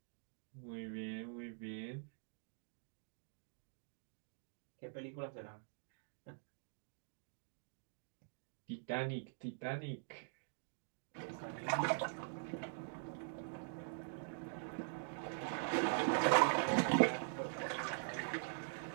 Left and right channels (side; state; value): left; silent; digital silence